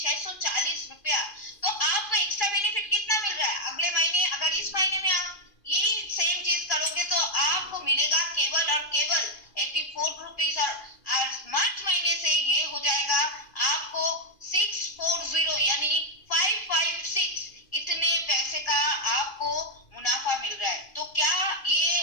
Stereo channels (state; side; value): late; right; 2.5 ms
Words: रुपया। तो आपको एक्स्ट्रा बेनिफिट कितना मिल रहा है? अगले महीने अगर इस महीने में आप यही सेम चीज करोगे तो आपको मिलेगा केवल और केवल 84 रुपीज, और मार्च महीने से ये हो जाएगा आपको 640 यानी 556 इतने पैसे का आपको मुनाफा मिल रहा है। तो क्या